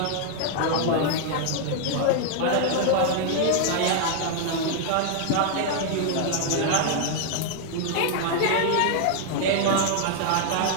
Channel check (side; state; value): both; different; correlation 0.00